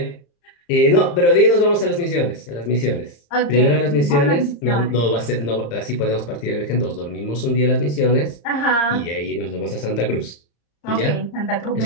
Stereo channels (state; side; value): late; right; 35 ms